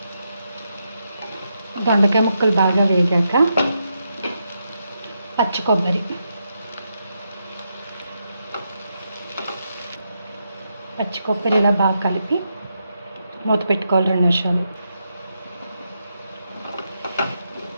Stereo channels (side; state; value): both; inverted; correlation -0.83